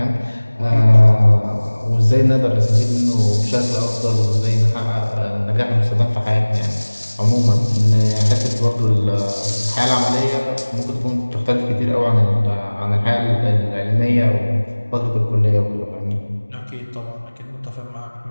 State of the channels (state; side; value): inverted; both; correlation -1.00